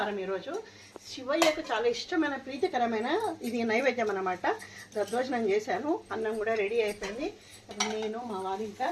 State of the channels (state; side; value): identical; both; correlation 1.00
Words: ఈరోజు శివయ్యకు చాలా ఇష్టమైన ప్రీతికరమైన ఇది నైవేద్యం అన్నమాట. దద్దోజనం చేశాను. అన్నం కూడా రెడీ అయిపోయింది. నేను మా వారు ఇంకా